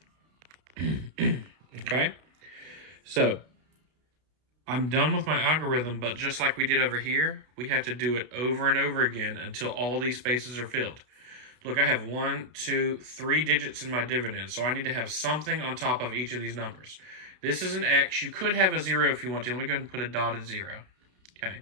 Okay? So I'm done with my algorithm, but just like we did over here, we have to do it over and over again until all these spaces are filled. Look, I have 1, 2, 3 digits in my dividend, so I need to have something on top of each of these numbers. This is an X. You could have a 0 if you want to. Let me go ahead and put a dotted 0. Okay.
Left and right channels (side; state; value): left; late; 32 ms